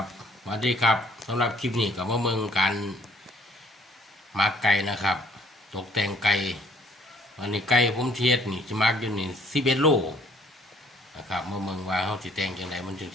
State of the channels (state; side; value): normal; both; correlation 0.60